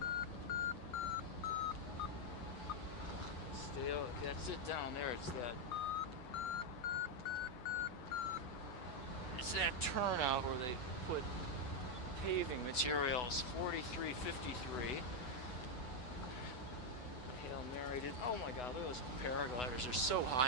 Stay. That's it down there. It's that turnout where they put paving materials. 43.53. Hail Narrated. Oh my God, look at those paragliders. They're so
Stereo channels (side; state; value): right; late; 8.1 ms